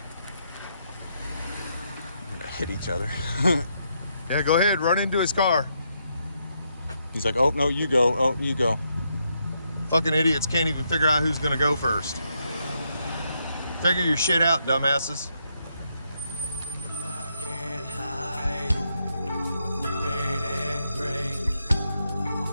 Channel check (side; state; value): both; inverted; correlation -0.79